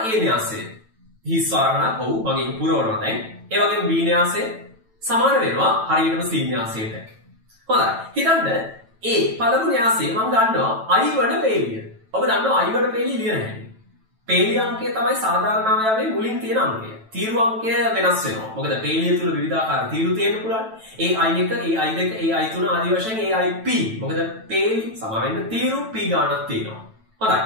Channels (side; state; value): left; late; 9.1 ms